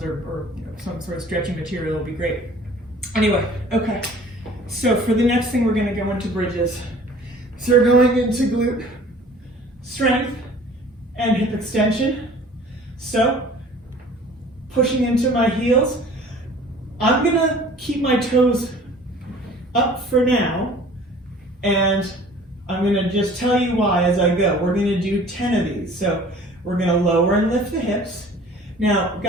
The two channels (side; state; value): both; normal; correlation 0.48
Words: or you know, some sort of stretchy material will be great. Anyway, okay. So for the next thing, we're going to go into bridges. So we're going into glute strength and hip extension. So pushing into my heels. I'm going to keep my toes up for now, and I'm going to just tell you why as I go. We're going to do 10 of these. So we're going to lower and lift the hips. Now,